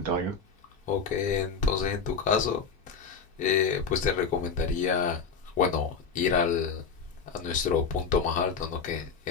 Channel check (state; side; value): quieter; right; 5.6 dB